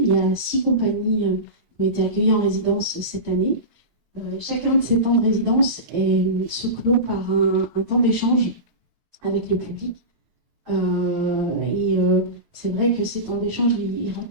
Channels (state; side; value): late; left; 3.1 ms